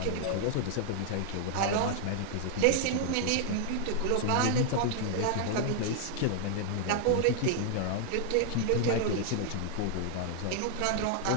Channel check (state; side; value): different; both; correlation 0.00